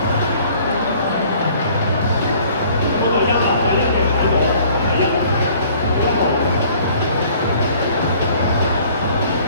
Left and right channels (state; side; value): inverted; both; correlation -0.55